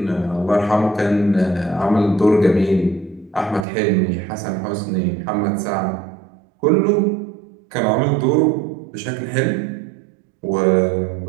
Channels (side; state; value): left; drops out; at 3.7 s